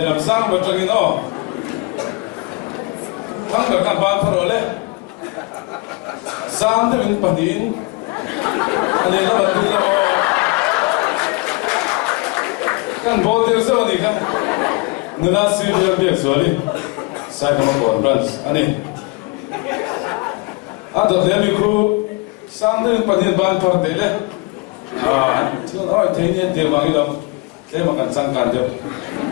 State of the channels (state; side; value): quieter; right; 26.8 dB